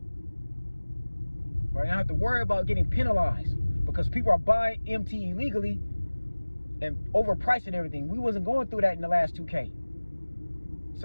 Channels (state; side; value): inverted; both; correlation -1.00